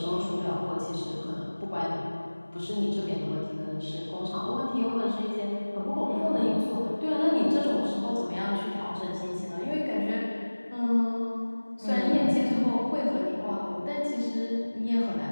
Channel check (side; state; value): both; inverted; correlation -1.00